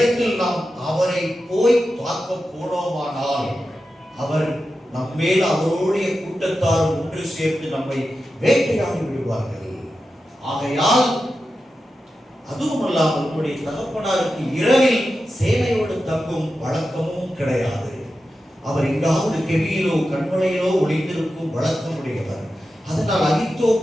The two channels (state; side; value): normal; both; correlation 0.91